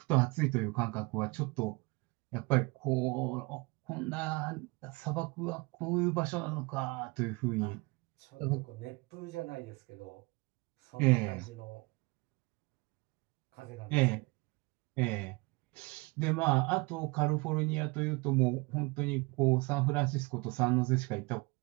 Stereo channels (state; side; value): quieter; left; 26.7 dB